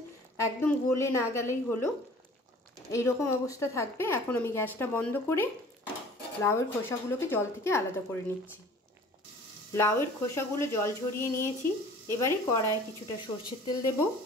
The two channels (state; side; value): normal; both; correlation 0.48